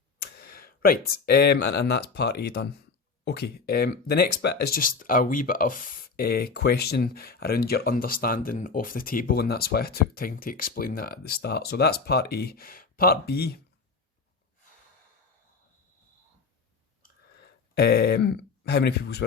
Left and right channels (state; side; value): quieter; right; 4.7 dB